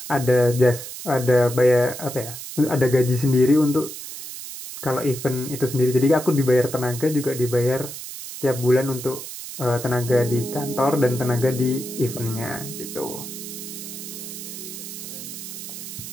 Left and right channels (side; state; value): right; noise; hiss, 10 dB below the sound